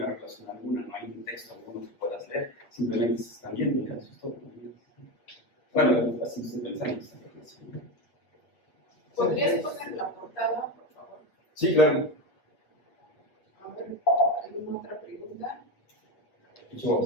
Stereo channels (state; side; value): late; right; 8.3 ms